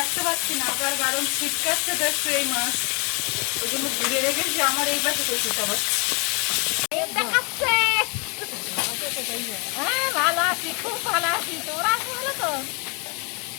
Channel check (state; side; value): quieter; right; 33.4 dB